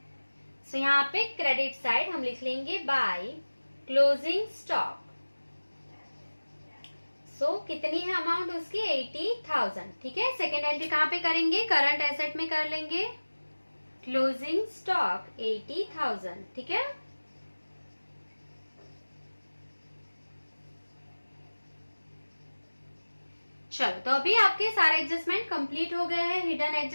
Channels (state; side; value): inverted; both; correlation -1.00